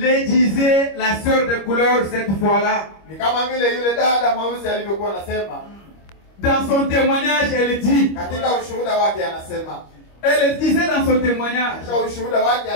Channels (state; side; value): late; right; 25 ms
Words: disait la sœur de couleur cette fois-là. Ni kama vile yule dada mweusi alivyokuwa anasema. Dans son témoignage, elle dit, Katika ushuhuda wake anasema. elle disait dans son témoignage, Katika ushuhuda wake